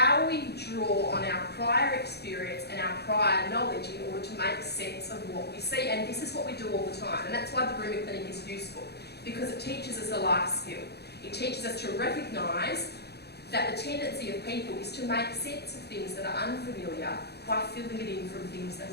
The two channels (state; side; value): late; right; 0.48 ms